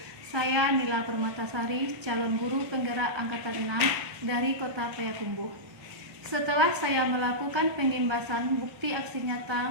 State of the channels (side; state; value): left; late; 1.3 ms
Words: Saya Nila Permatasari, calon guru penggerak angkatan 6 dari Kota Payakumbuh. Setelah saya melakukan penyimbasan bukti aksi nyata